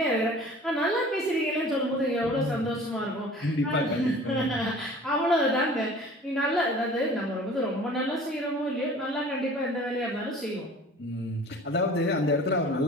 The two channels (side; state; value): both; normal; correlation 0.46